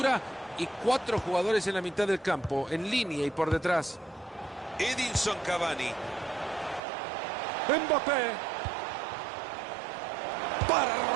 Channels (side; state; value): left; drops out; at 6.8 s